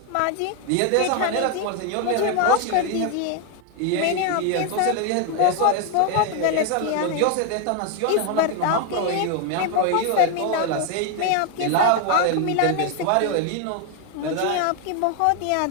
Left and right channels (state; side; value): different; both; correlation 0.01